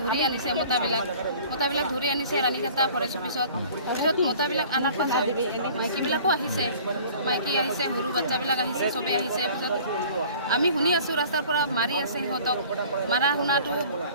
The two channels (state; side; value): inverted; both; correlation -0.48